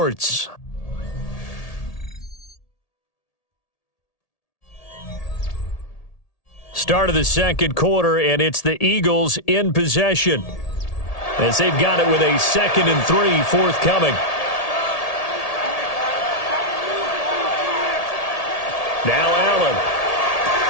Start of the second quarter, and it's the Eagles in possession as they've got it with a 2nd and 3 forthcoming. Now Allen.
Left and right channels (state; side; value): late; right; 1.8 ms